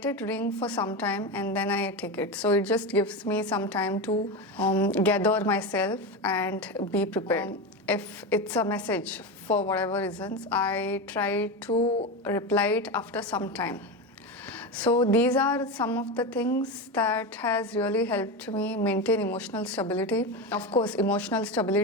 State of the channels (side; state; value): both; normal; correlation 0.18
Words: it ring for some time and then I take it. So it just gives me some time to gather myself and be prepared. If it's a message for whatever reasons, I try to reply it after some time. So these are some of the things that has really helped me maintain emotional stability. Of course, emotional